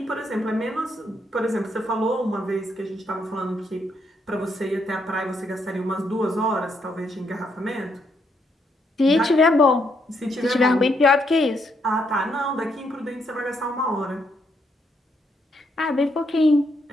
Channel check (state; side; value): normal; both; correlation 0.75